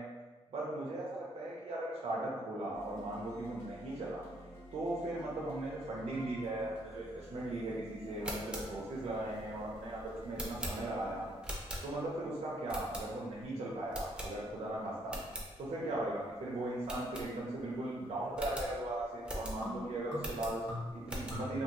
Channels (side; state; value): both; normal; correlation 0.67